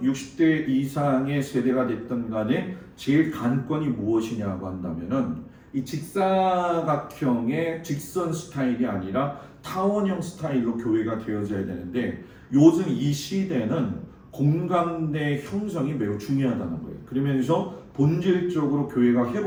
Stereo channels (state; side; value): identical; both; correlation 1.00